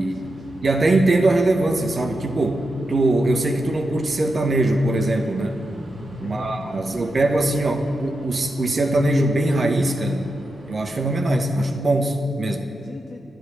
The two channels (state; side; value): normal; both; correlation 0.87